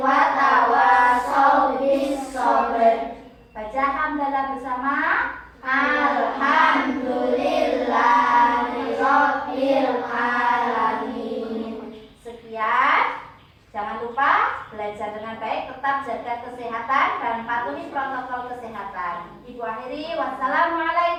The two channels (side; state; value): both; identical; correlation 1.00